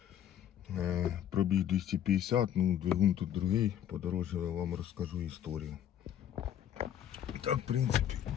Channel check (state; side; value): quieter; right; 10.2 dB